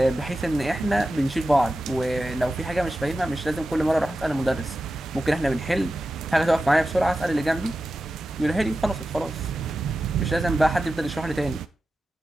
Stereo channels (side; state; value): both; normal; correlation 0.92